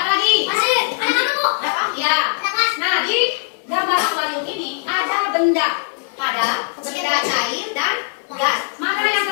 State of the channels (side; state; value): right; silent; 57 dB below the other